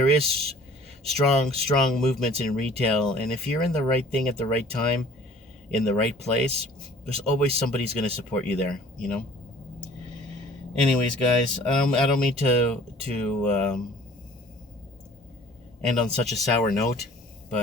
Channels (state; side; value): normal; both; correlation 0.51